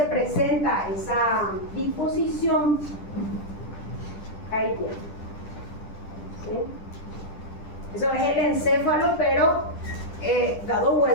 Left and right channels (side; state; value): right; late; 10 ms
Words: presenta esa disposición. Ahí tiene. ¿Sí? Eso es el encéfalo, pero dado